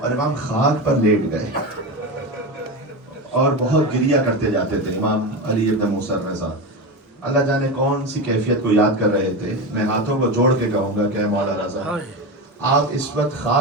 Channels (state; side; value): normal; both; correlation 0.20